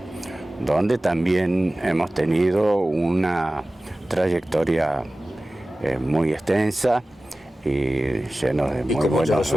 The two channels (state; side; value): normal; both; correlation 0.97